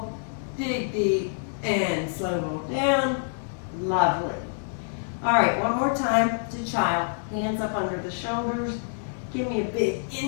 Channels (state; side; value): silent; right; 57 dB below the other